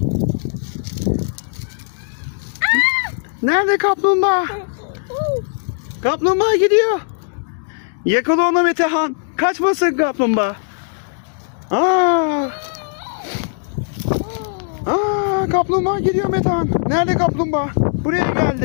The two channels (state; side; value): silent; right; digital silence